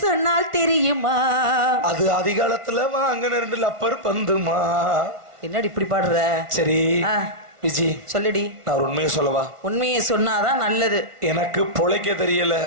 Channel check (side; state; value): left; late; 1.4 ms